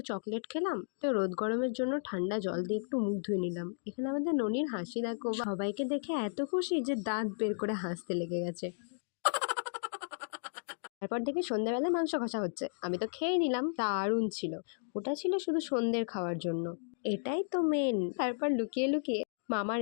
চকলেট খেলাম, তো রোদ গরমের জন্য ঠান্ডা জল দিয়ে একটু মুখ ধুয়ে নিলাম। এখানে আমাদের ননির হাসি দেখো, সবাইকে দেখে এত খুশি যে দাঁত বের করে হাসতে লেগে গেছে। তারপর দেখি সন্ধ্যাবেলায় মাংস কষা হচ্ছে। আমি তো খেয়ে নিলাম, দারুণ ছিল। ওটা ছিল শুধু সন্ধ্যের খাওয়ার জন্য, এটাই তো মেন। তারপর লুকিয়ে লুকিয়ে মামার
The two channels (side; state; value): right; silent; digital silence